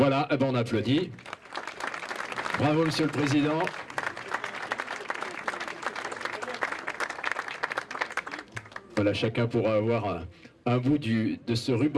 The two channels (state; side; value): identical; both; correlation 1.00